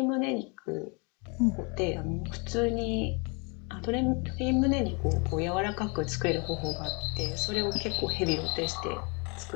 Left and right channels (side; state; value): right; quieter; 32.3 dB